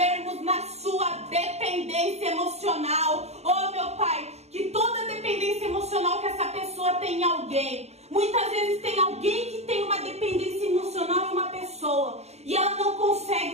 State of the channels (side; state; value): left; late; 0.31 ms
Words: na sua dependência emocional. Meu Pai, que toda dependência emocional que essa pessoa tem em alguém, muitas vezes tem alguém que tem uma dependência emocional em uma pessoa e ela não